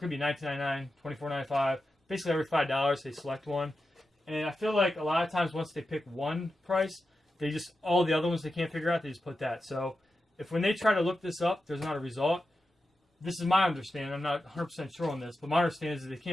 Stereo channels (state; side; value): normal; both; correlation 0.90